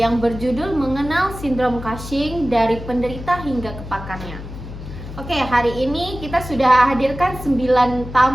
berjudul mengenal sindrom Cushing dari penderita hingga ke pakarnya. Oke, hari ini kita sudah hadirkan 9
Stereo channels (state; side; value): noise; left; hum, 11 dB below the sound